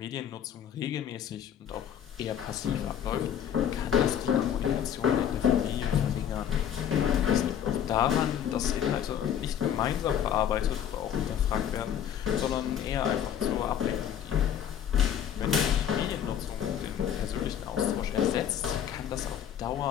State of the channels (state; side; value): quieter; right; 9.4 dB